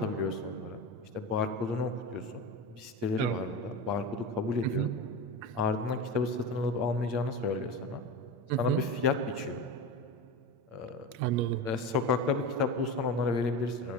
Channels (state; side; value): late; left; 8.8 ms